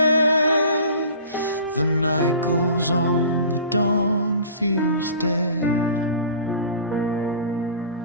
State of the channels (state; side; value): inverted; both; correlation -0.42